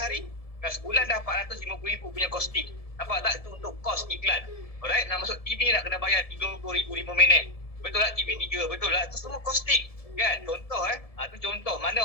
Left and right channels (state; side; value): late; right; 1.7 ms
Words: kan sebulan dah 450,000 punya costing. Nampak tak? Itu untuk kos iklan. Alright, nak masuk TV nak kena bayar 30,000 5 minit. Betul tak? TV 3, betul tak? Itu semua costing. Kan? Contoh itu contoh mana